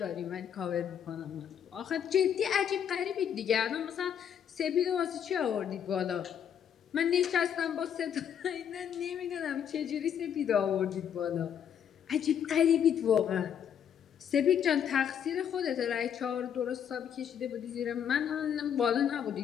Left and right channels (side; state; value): right; quieter; 8.6 dB